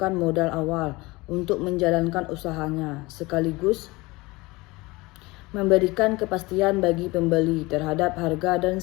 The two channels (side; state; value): right; quieter; 22.6 dB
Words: modal awal untuk menjalankan usahanya, sekaligus memberikan kepastian bagi pembeli terhadap harga dan